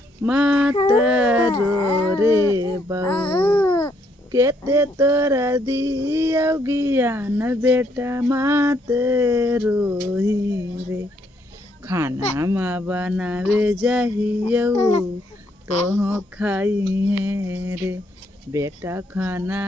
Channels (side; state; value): both; normal; correlation 0.72